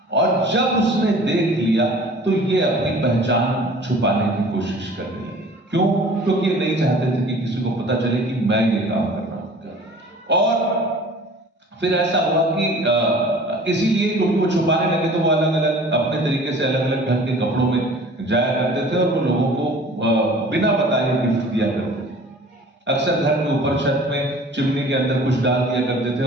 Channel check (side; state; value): both; normal; correlation 0.46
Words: और जब उसने देख लिया तो ये अपनी पहचान छुपाने की कोशिश करने लगे। क्यों? क्योंकि ये नहीं चाहते थे कि किसी को पता चले कि मैं ये काम कर रहा हूं। और फिर ऐसा हुआ कि इसीलिए क्योंकि वो छुपाने लगे, तो वो अलग अलग अपने तरीके से अलग अलग ढंग के कपड़ों में जाया करते थे, और वो लोगों को बिना बताए गिफ्ट दिया करते थे। अक्सर घर के ऊपर छत में चिमनी के अंदर कुछ डाल दिया करते थे,